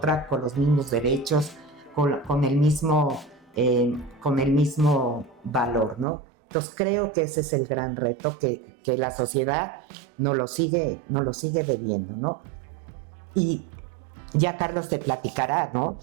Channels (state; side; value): drops out; left; at 6.1 s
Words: con los mismos derechos, con el mismo valor, ¿no? Entonces creo que ese es el gran reto que la sociedad nos lo sigue debiendo, ¿no? Y ya Carlos te platicará, ¿no?